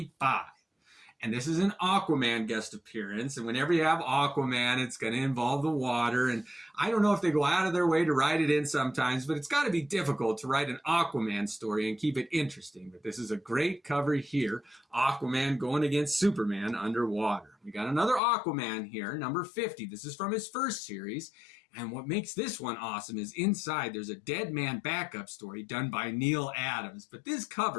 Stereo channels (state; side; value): drops out; right; at 18.2 s